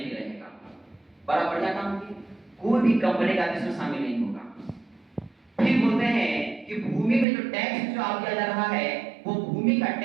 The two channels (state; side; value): drops out; left; at 7.2 s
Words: रहेगा। बड़ा बढ़िया काम किया, कोई भी कंपनी का आदमी उसमें शामिल नहीं होगा। फिर बोलते हैं कि भूमि में जो टैक्स जो आप दिया जा रहा है वो भूमि का